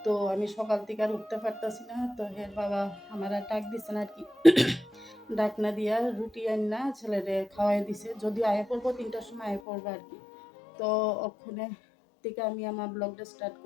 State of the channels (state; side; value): drops out; right; at 9.6 s